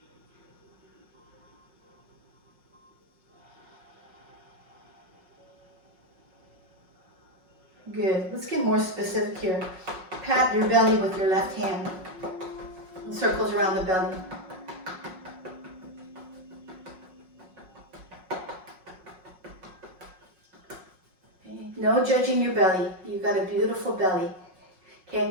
Good. Let's get more specific here. Pat your belly with your left hand. Circles around the belly. Okay. No judging your belly. You've got a beautiful belly.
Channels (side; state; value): left; late; 5.5 ms